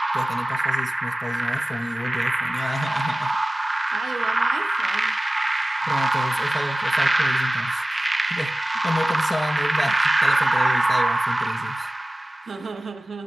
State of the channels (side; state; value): both; normal; correlation 0.97